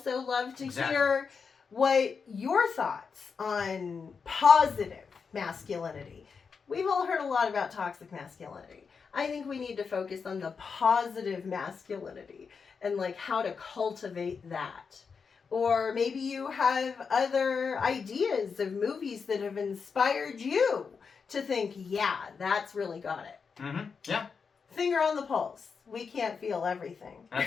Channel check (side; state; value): right; quieter; 5.6 dB